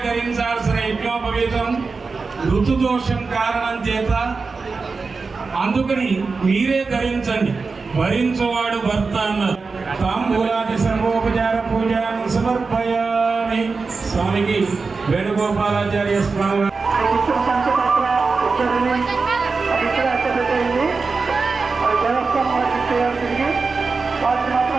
ధరించాల్సిన యజ్ఞోపవీతం ఋతుదోషం కారణం చేత, అందుకని మీరే ధరించండి, భరించువాడు భర్త అన్నారు. తాంబూలాది సర్వోపచార పూజను సమర్పయామి. స్వామికి వేణుగోపాలాచార్య స్వామి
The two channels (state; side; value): quieter; left; 4.4 dB